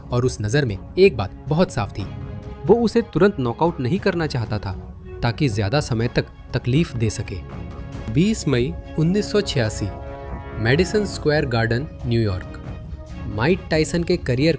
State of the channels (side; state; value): both; identical; correlation 1.00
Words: और उस नज़र में एक बात बहुत साफ थी। वो उसे तुरंत नॉकआउट नहीं करना चाहता था ताकि ज़्यादा समय तक तकलीफ दे सके। 20 मई 1986, Madison Square garden, New York. Mike Tyson के करियर